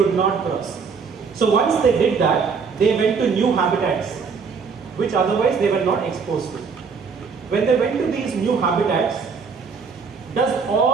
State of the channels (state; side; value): quieter; left; 5.5 dB